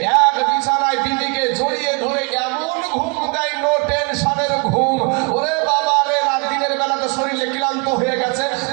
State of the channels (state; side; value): quieter; left; 31.8 dB